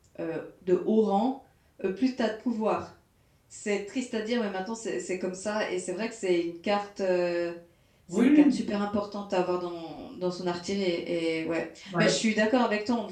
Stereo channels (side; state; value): both; identical; correlation 1.00